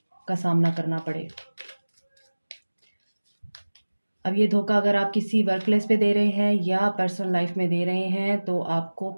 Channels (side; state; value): both; inverted; correlation -1.00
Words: का सामना करना पड़े। अब ये धोखा अगर आप किसी वर्क प्लेस पे दे रहे हैं या पर्सनल लाइफ में दे रहे हैं तो आपको